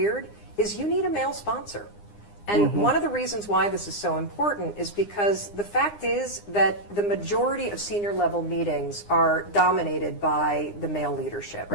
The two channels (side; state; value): right; late; 9.8 ms